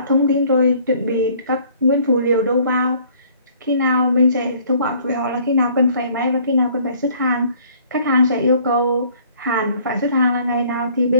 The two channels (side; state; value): both; inverted; correlation -0.58